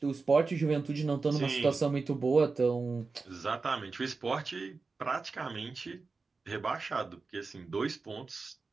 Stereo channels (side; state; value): left; quieter; 4.2 dB